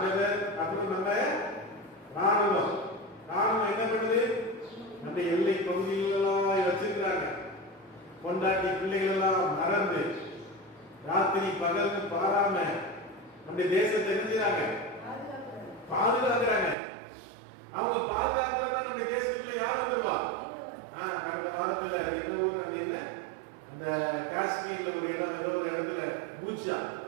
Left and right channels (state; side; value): drops out; left; at 16.8 s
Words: அப்புறம் நம்ம ராணுவம் என்ன பண்ணுது, நம்ம எல்லை பகுதிகளெல்லாம் வச்சிருக்கிறாங்க. கொண்டாட்டி பிள்ளைகள் எல்லாம் மறந்து ராத்திரி பகல்னு பாராம நம்ம தேசத்தை என்ன பாதுகாக்கிறாங்க. அவங்க பாதுகாக்கிறதா நம்ம தேசத்துல யார் வந்துருவா? கடந்த வாரத்துல என்ன ஊர் அது என்ன, அந்த காஷ்மீர்ல ஒரு இடம், ஏதோ ஒரு இடத்துல பூஜா,